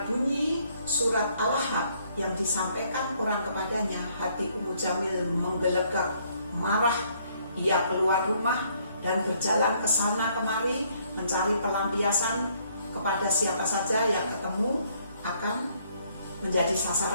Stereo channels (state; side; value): inverted; both; correlation -0.67